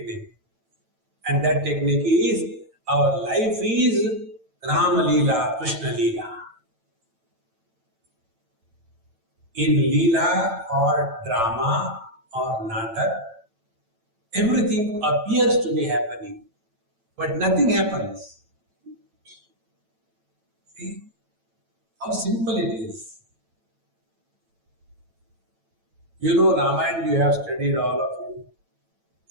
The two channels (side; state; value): left; late; 8.9 ms